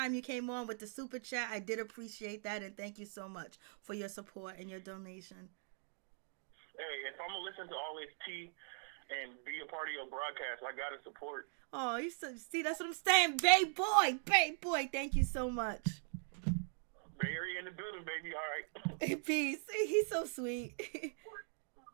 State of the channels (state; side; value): silent; left; 51 dB below the other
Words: you came on with the super chat. I did appreciate that, and thank you so much for your support and your donation. Hey, if I'm going to listen to all this tea and be a part of your broadcast, I got to support. Oh, see, that's what I'm saying. Babe boy. Thank you so much. Bay Area in the building, baby. All right. Peace. He's so sweet.